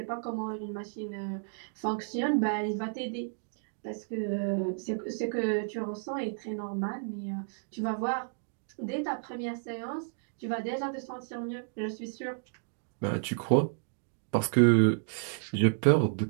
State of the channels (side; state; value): left; silent; digital silence